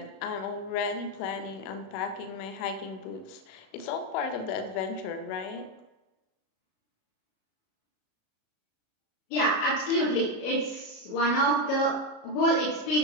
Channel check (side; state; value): right; late; 37 ms